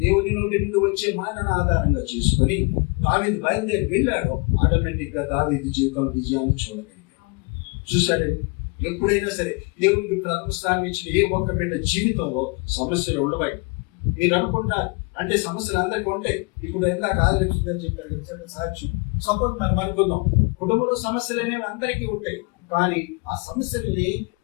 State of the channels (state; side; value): quieter; right; 30.9 dB